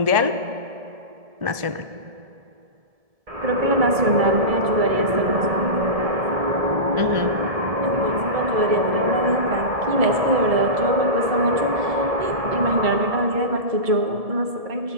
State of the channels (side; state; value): left; late; 1.7 ms